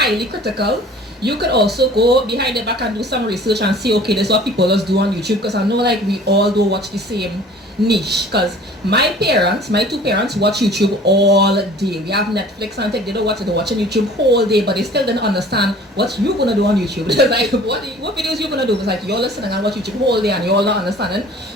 critical. You could also go behind the back and do some research and see, okay, this is what people just do on YouTube, because I know like we all do watch the same niche. Because my two parents watch YouTube all day. We have Netflix and they don't watch it, they're watching YouTube whole day, but they still didn't understand what you're gonna do on YouTube. It's like, what videos you gonna do? It's like you're listening and watch YouTube whole day and you're all not understanding.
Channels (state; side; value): normal; both; correlation 0.48